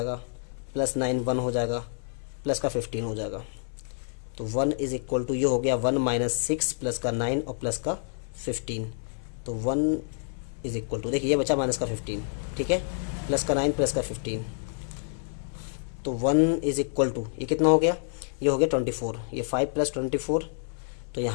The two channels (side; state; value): right; silent; 59 dB below the other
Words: प्लस 9 1 हो जाएगा प्लस का 15 हो जाएगा। तो 1 इज इक्वल टू ये हो गया 1 माइनस 6 प्लस का 9 और प्लस का 15। तो 1 इज इक्वल टू देखिए ये बचा माइनस का 15। ठीक है, प्लस का 9 प्लस का 15। तो 1 इज इक्वल टू ये कितना हो गया, ये हो गया 24। ये 5 प्लस 24, तो